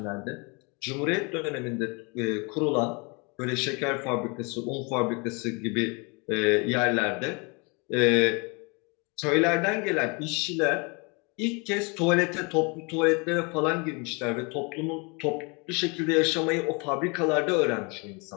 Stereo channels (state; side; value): quieter; right; 30.9 dB